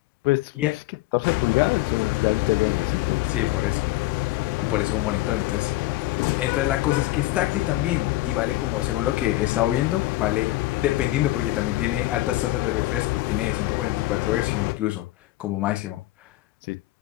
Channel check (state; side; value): quieter; right; 17.7 dB